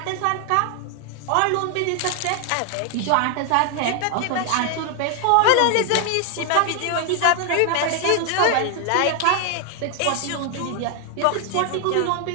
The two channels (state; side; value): different; both; correlation 0.00